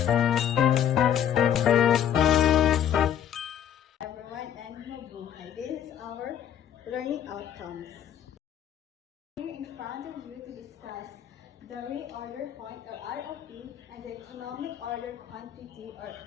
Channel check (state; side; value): quieter; right; 9.7 dB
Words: Everyone, and mabuhay. This is our learning outcomes. Here in front of you to discuss the reorder point or ROP and the economic order quantity or